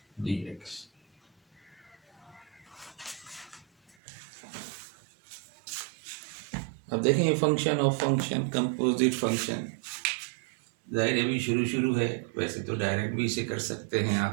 dx। अब देखें ये function of function, composite function, जाहिर अभी शुरू है। वैसे तो डायरेक्ट भी इसे कर सकते हैं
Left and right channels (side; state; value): left; drops out; at 4.0 s